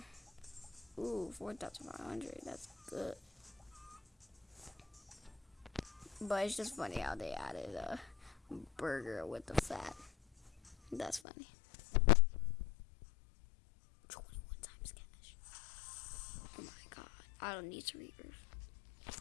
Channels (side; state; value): right; drops out; at 11.2 s